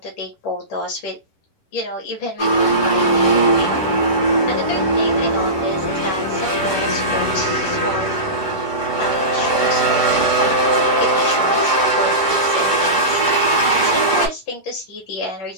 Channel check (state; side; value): late; right; 10 ms